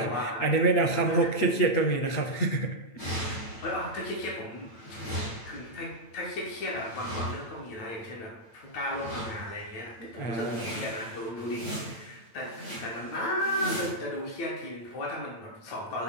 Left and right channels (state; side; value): late; right; 8.8 ms